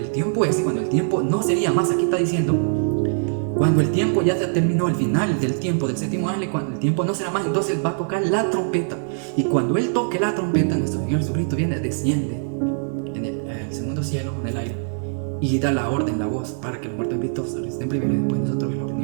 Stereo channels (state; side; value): silent; left; digital silence